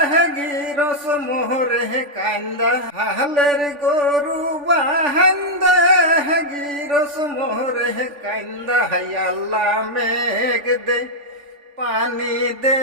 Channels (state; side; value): late; left; 3.5 ms